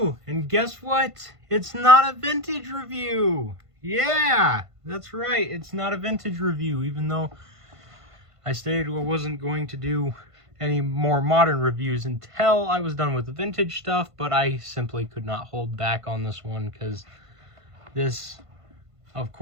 and guess what? It's not a vintage review. Yeah, that's right, it's not a vintage review, even though I stated I wasn't going to do any more modern reviews until I was done with the vintage stuff, but I simply could not hold back on this one because this, of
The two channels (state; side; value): late; left; 1.5 ms